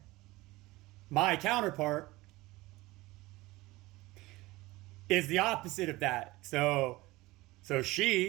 my counterpart is the opposite of that. So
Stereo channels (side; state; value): left; quieter; 20.0 dB